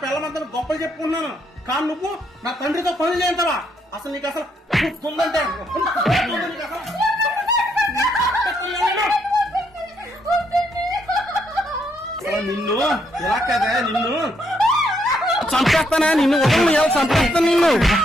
పిల్లం అంతా గొప్పలు చెప్పుకున్నాను. కానీ నువ్వు నా తండ్రితో పనులు చేయంటావా? అసలు నీకు అసలు ఉందంటే నిన్ను ఎలా కదా, నిన్ను చంపేస్తానా? నిన్ను ఉదయం ఎలా చంపేస్తాను? నిన్ను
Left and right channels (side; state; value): both; normal; correlation 0.74